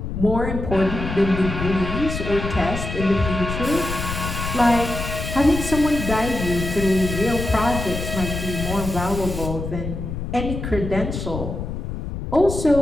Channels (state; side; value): noise; left; rumble, 5 dB below the sound